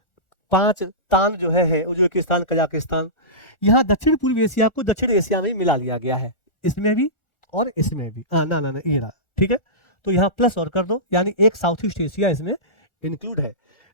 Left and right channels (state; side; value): late; right; 1.4 ms